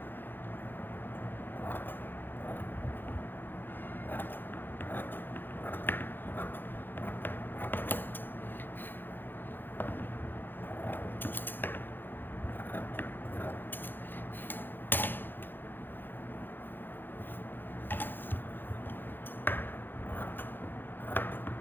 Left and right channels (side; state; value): right; late; 0.095 ms